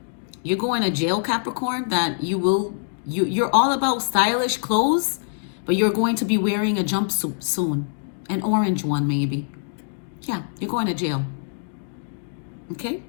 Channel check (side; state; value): right; silent; digital silence